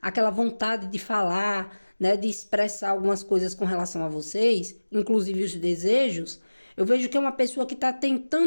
aquela vontade de falar, né? De expressar algumas coisas com relação a vocês, inclusive os desejos, eu vejo que é uma pessoa que tá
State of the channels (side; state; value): both; inverted; correlation -1.00